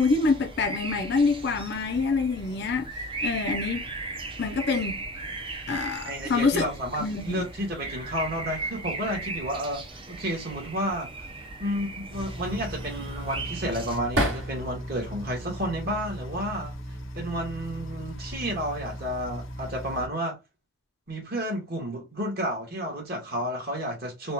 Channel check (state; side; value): normal; both; correlation 0.33